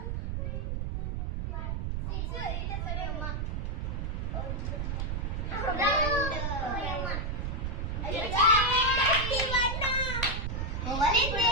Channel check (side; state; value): right; noise; rumble, 2 dB below the sound